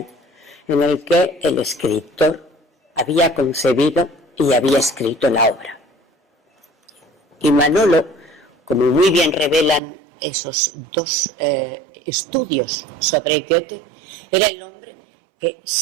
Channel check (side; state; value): left; drops out; at 9.8 s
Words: en el que el escritor había concebido y había escrito la obra. Y Manolo, como muy bien revelan esos dos estudios sobre Goethe, era el hombre que